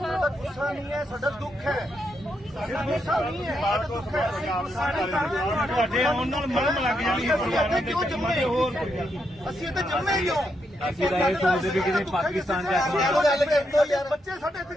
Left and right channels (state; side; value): normal; both; correlation 0.80